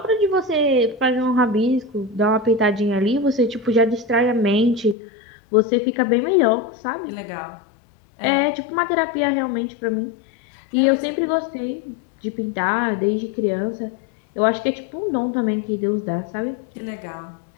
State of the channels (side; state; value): right; drops out; at 5.0 s